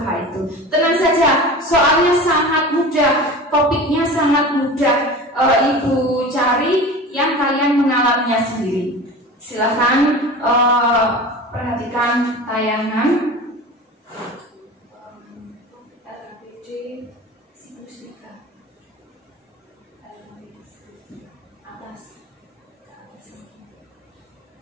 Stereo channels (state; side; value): normal; both; correlation 0.34